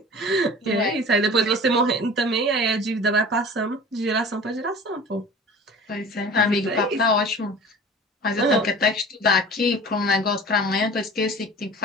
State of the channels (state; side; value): normal; both; correlation 0.41